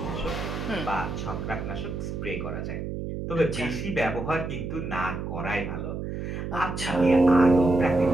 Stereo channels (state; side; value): noise; right; hum, 5 dB below the sound